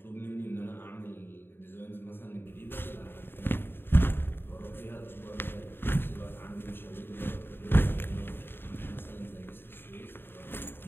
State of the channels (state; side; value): late; right; 0.10 ms